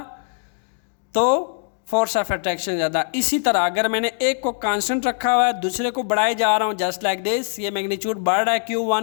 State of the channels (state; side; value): silent; right; digital silence